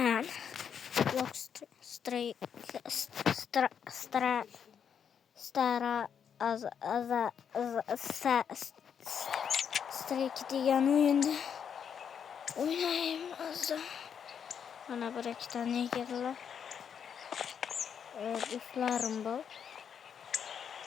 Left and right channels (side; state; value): right; quieter; 7.7 dB